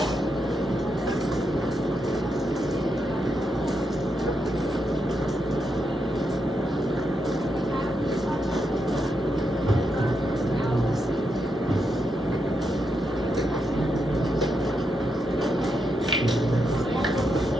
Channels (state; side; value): normal; both; correlation 0.83